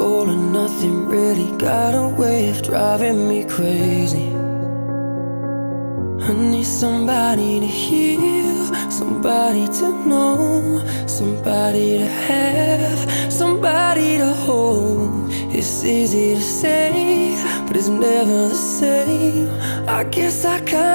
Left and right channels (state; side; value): inverted; both; correlation -1.00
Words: or nothing really got a way of driving me crazy. I need somebody to heal, somebody to know, somebody to have, somebody to hold. It's easy to say, but it's never the same. I guess I